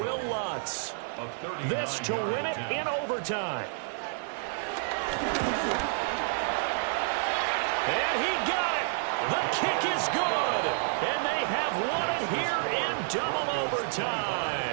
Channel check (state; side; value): silent; left; 58 dB below the other